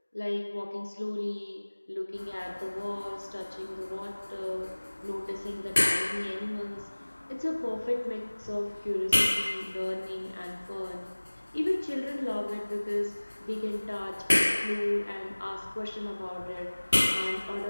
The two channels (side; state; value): both; inverted; correlation -1.00